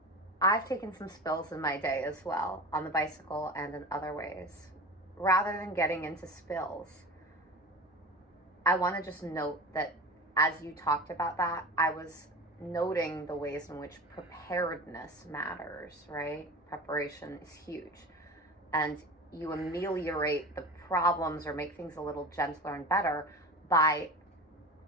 I've taken some spills in my day as well on the bicycle and in other ways. Rather than getting into spills, I want to just note that as you talked about that, I was noting the ways in which preparedness matters, right? Preparation is huge. And you ameliorate the problems or make things a little gentler and better by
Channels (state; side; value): normal; both; correlation 0.32